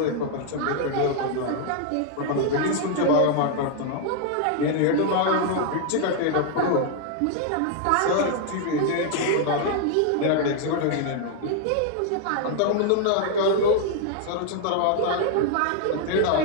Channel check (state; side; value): different; both; correlation 0.00